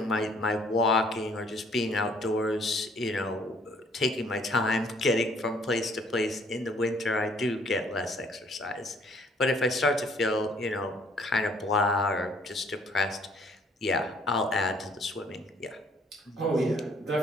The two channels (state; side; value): normal; both; correlation 0.61